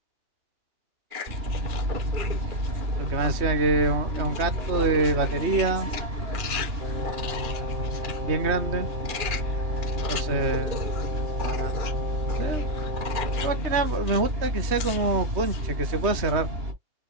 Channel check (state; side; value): late; left; 3.1 ms